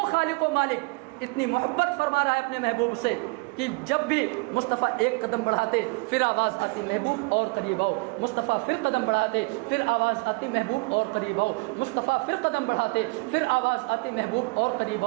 خالق و مالک اتنی محبت فرما رہا ہے اپنے محبوب سے کہ جب بھی مصطفیٰ ایک قدم بڑھاتے پھر آواز آتی محبوب اور قریب آؤ. مصطفیٰ پھر قدم بڑھاتے پھر آواز آتی محبوب اور قریب آؤ. مصطفیٰ پھر قدم بڑھاتے پھر آواز آتی محبوب اور قریب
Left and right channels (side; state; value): left; quieter; 28.3 dB